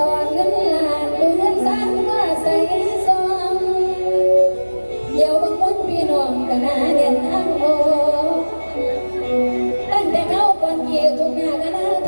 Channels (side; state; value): both; inverted; correlation -1.00